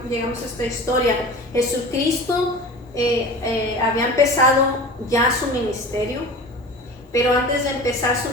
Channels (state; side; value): normal; both; correlation 0.36